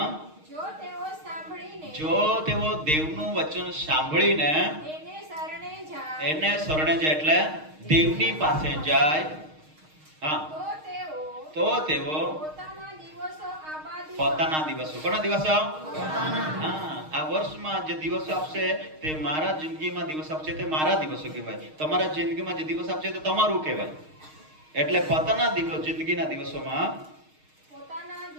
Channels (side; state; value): left; late; 6.5 ms